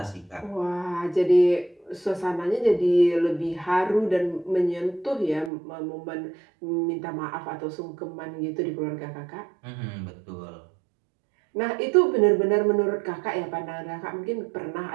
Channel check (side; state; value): left; drops out; at 5.5 s